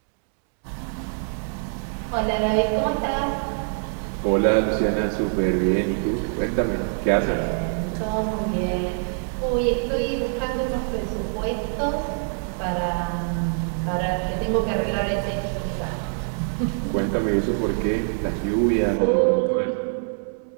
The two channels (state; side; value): silent; left; 62 dB below the other